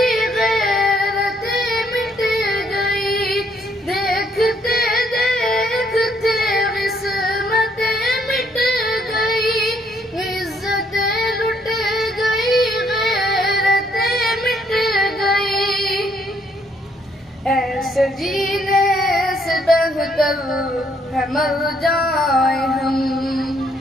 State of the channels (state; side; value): normal; both; correlation 0.69